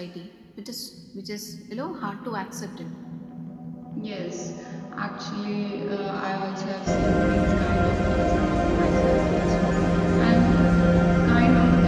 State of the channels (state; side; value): identical; both; correlation 1.00